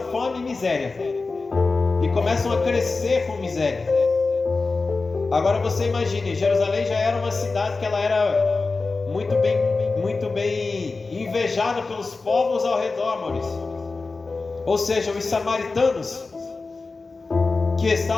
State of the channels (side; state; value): right; quieter; 3.9 dB